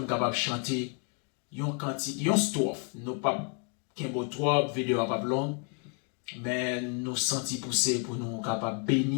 nous capable de chanter une strophe. Nous pas qu'un beau trop, vidéo pas long, mais nous sentis pousser pour nous capable de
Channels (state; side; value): quieter; right; 38.0 dB